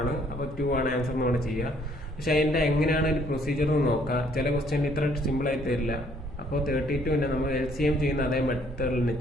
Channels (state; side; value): normal; both; correlation 0.64